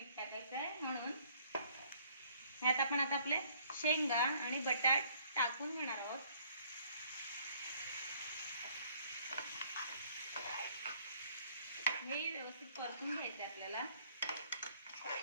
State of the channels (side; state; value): both; inverted; correlation -0.60